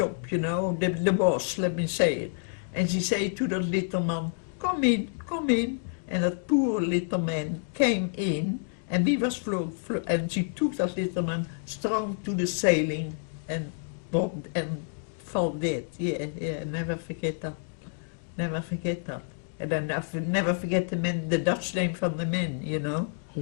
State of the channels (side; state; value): right; silent; digital silence